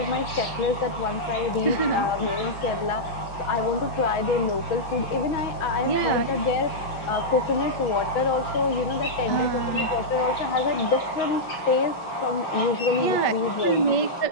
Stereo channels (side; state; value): right; late; 5.8 ms